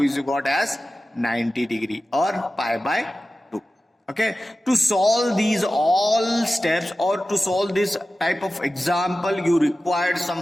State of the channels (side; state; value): both; normal; correlation 0.95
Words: is got as 90 degree or pi by 2. Okay, to solve these all steps or to solve this type of example, you required